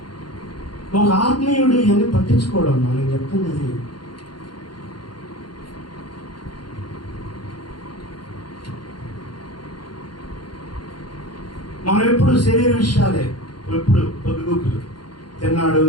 ఒక ఆత్మీయుడు ఇవన్నీ పట్టించుకోవడం నేను చెప్తున్నది. మనం ఎప్పుడు శరీర విషయాలే, ఎప్పుడు పొద్దుగుకులు తిన్నాడు,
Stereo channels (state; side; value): late; right; 0.71 ms